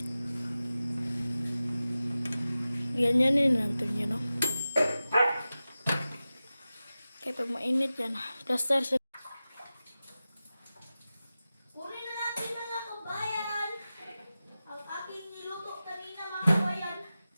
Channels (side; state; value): both; inverted; correlation -0.95